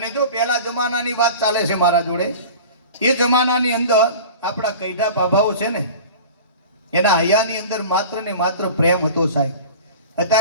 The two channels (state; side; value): inverted; both; correlation -0.38